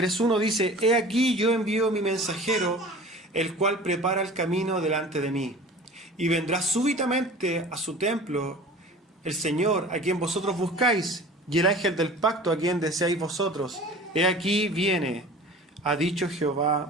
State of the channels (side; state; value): both; normal; correlation 0.41